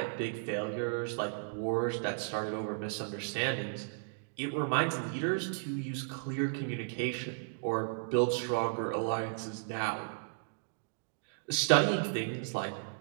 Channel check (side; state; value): left; silent; digital silence